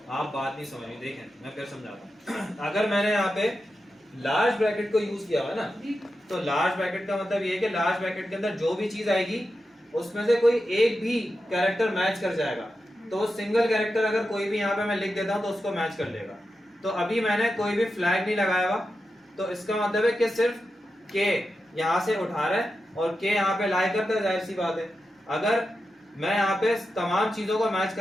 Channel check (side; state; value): both; normal; correlation 0.90